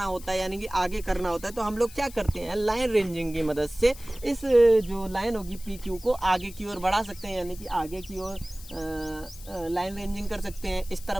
होता है, यानी कि आगे करना होता है, तो हम लोग क्या करते हैं, लाइन रेंजिंग की मदद से इस जो लाइन होगी पी क्यू को आगे की ओर बढ़ा सकते हैं, यानी कि आगे की ओर लाइन रेंजिंग कर सकते हैं, इस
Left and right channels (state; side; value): noise; left; hiss, 18 dB below the sound